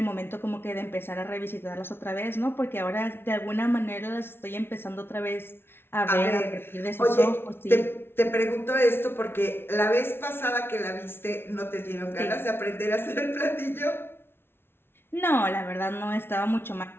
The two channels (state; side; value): late; right; 0.11 ms